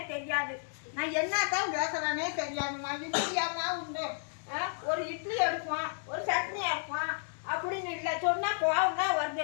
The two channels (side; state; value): right; silent; digital silence